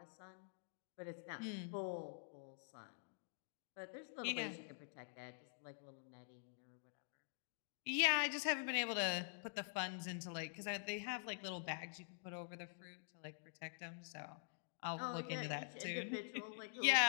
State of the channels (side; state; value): right; silent; digital silence